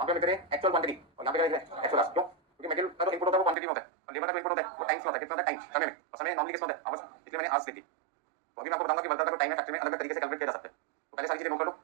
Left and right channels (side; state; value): left; drops out; at 3.6 s